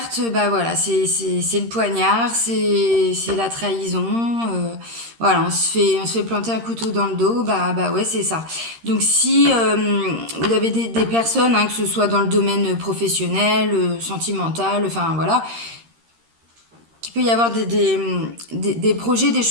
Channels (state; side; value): late; left; 13 ms